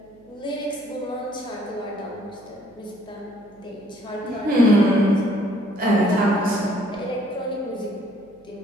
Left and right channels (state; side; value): noise; right; hum, 30 dB below the sound